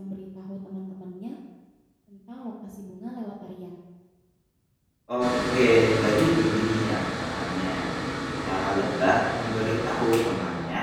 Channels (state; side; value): identical; both; correlation 1.00